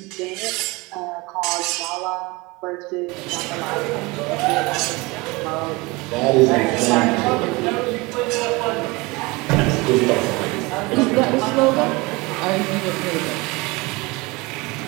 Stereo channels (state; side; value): quieter; left; 24.2 dB